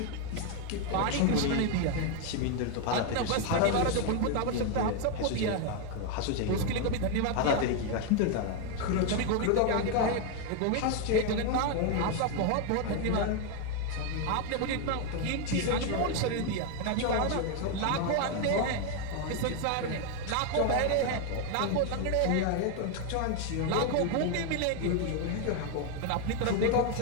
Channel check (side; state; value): both; different; correlation 0.01